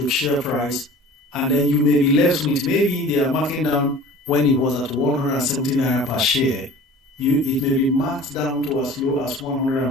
share price. And then you may be left with, maybe they are marking down when it was at 170 naira per share. It may be marked down to as low as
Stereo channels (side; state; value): both; normal; correlation 0.42